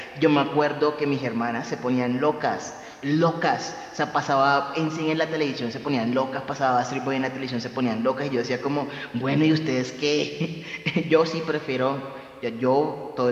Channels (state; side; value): identical; both; correlation 1.00